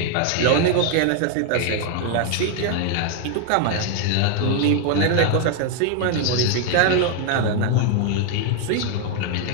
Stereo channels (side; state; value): both; different; correlation 0.00